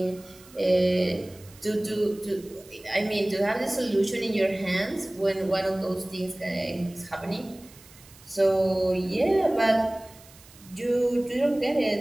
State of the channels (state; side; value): noise; right; hiss, 23 dB below the sound